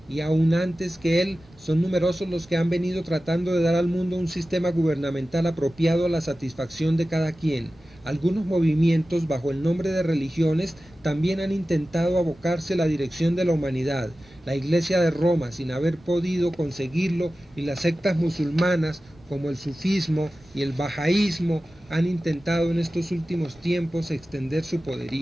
y aún antes que él, son numerosos los que han venido tratando de dar al mundo un sistema gubernamental apropiado a la satisfacción de cada quien. Algunos movimientos, bajo el nombre de religiones, también han intentado abocarse a la dirección de la humanidad. la Iglesia de Roma, sin haber podido conseguirlo, y las sectas musulmanas como el sufismo y el bahaísmo han intentado en estos últimos tiempos extender su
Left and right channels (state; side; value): normal; both; correlation 0.95